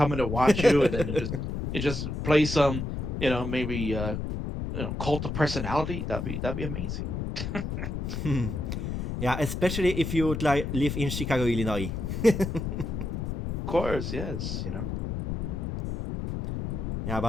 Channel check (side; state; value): left; noise; rumble, 3 dB below the sound